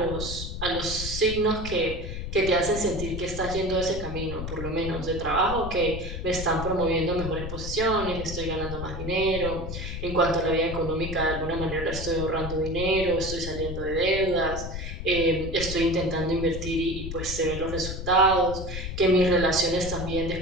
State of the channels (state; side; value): noise; left; rumble, 6 dB below the sound